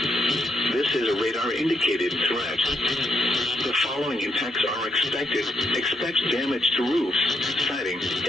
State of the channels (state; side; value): normal; both; correlation 0.79